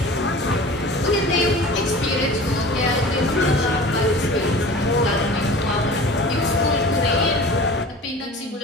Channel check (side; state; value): both; normal; correlation 0.39